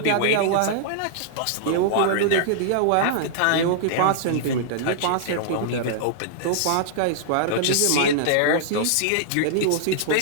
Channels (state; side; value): different; both; correlation -0.01